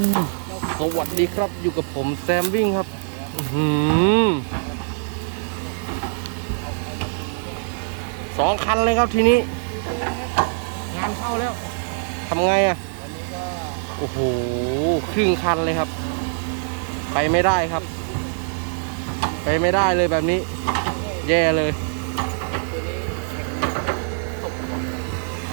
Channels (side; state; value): left; silent; digital silence